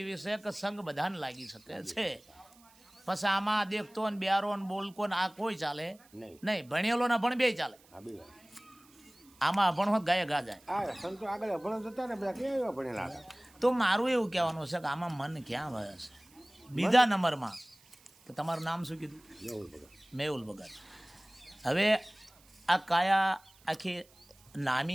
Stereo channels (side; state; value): right; noise; hiss, 28 dB below the sound